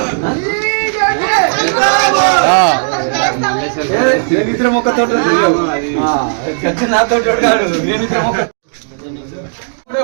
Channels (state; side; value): silent; left; digital silence